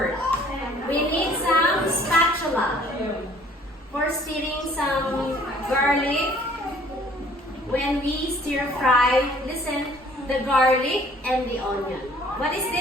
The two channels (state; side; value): normal; both; correlation 0.56